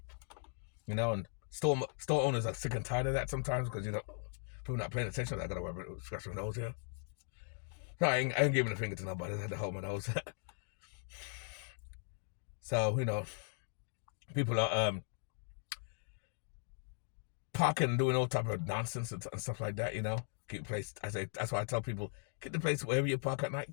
You know, and store owners are sick and tired of that sometimes because people not paying attention. I gotta worry about scratch my nose here. No, I ain't giving a finger to nobody. I had to hold my nose. So people are parking and doing all type of nonsense and stuff like that. Keep the place. That's why I tell people, keep the place wherever you park at night.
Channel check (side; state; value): right; silent; 52 dB below the other